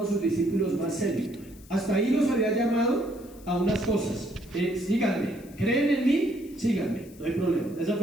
a sus discípulos más serios. Hasta ahí los había llamado a unas cosas: síganme, creen en mí, síganme, no hay problema. Esa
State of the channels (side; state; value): left; noise; hiss, 24 dB below the sound